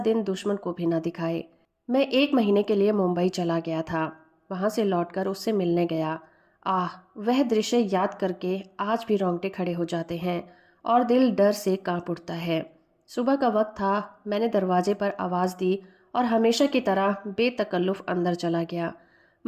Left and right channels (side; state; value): both; identical; correlation 1.00